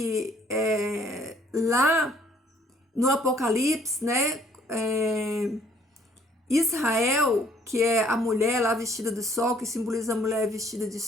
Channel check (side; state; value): both; normal; correlation 0.61